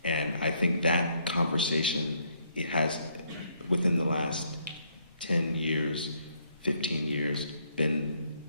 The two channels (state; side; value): inverted; both; correlation -0.71